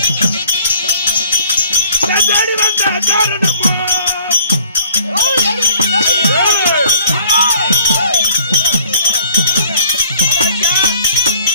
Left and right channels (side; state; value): both; inverted; correlation -0.55